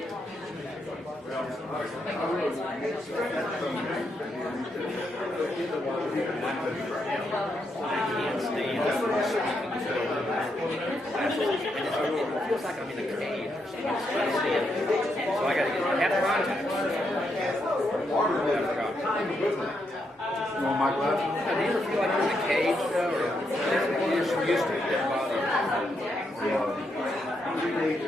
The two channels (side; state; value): both; normal; correlation 0.80